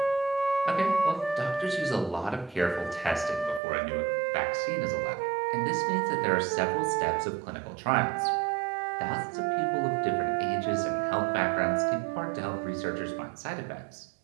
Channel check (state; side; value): drops out; left; at 3.6 s